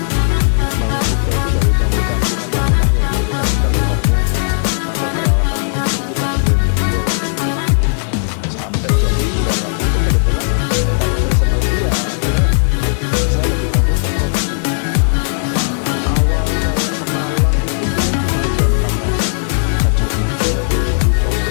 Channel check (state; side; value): silent; right; digital silence